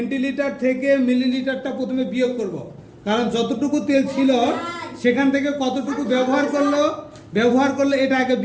থেকে মিলিলিটারটা প্রথমে বিয়োগ করব, কারণ যতটুকু তেল ছিল সেখান থেকে কতটুকু ব্যবহার করলে এটা আগে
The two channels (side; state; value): both; identical; correlation 1.00